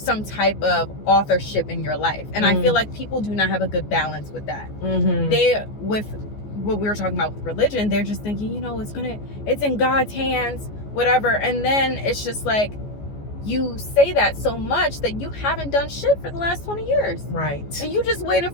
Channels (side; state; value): right; late; 14 ms